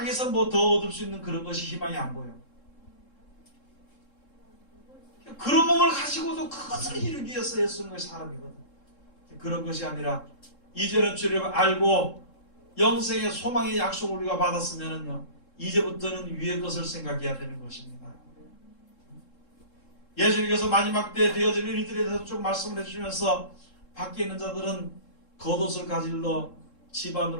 뭐 더 얻을 수 있는 그런 것이 희망이 안 보여. 그런 몸을 가지고도 그것을 이루기 위해서 애쓰는 것이 사람이거든. 그런 것이 아니라 이제는 주를 알고 영생의 소망의 약속을 우리가 받았으면은요, 이제부터는 위의 것을 생각해야 되는 것입니다. 예수님께서 마지막 때 되어질 일들에 대해서 쭉 말씀을 해주시면서 밖에 있는 자들은 겉옷을 가질러 집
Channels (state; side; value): late; right; 3.7 ms